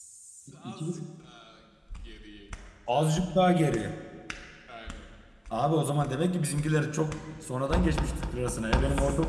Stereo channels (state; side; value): identical; both; correlation 1.00